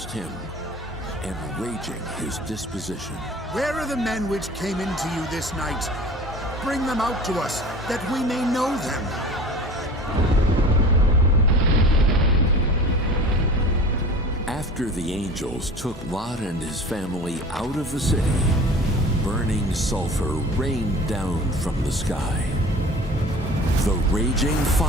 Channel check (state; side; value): normal; both; correlation 0.40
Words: Him, and raging His disposition. Where are the men which came into you this night? Bring them out to us, that we may know them. After the angels took Lot and his family out of the city, burning sulfur rained down from the sky. The raging